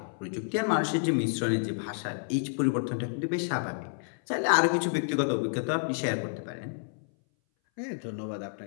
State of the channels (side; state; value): right; silent; 58 dB below the other